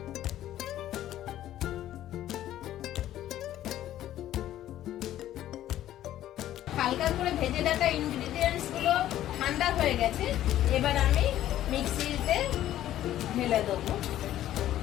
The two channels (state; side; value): quieter; right; 12.8 dB